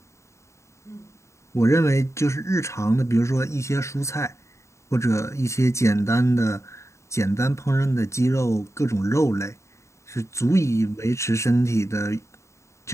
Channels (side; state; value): right; late; 0.14 ms